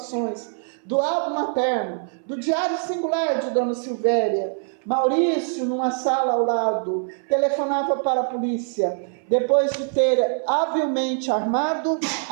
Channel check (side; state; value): left; silent; 60 dB below the other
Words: do álbum materno, do diário singular de Dona Silvéria, Maurício, numa sala ao lado, telefonava para a polícia, depois de ter habilmente armado